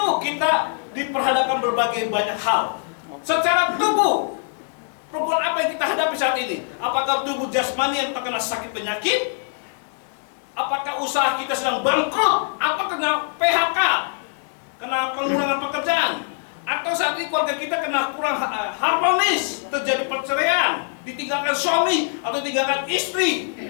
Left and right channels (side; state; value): right; silent; 63 dB below the other